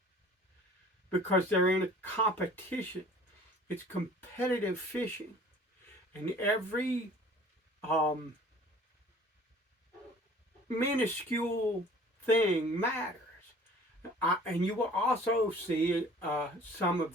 because they're in a competition. It's competitive fishing, and every minuscule thing matters. And you will also see some of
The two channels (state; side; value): normal; both; correlation 0.49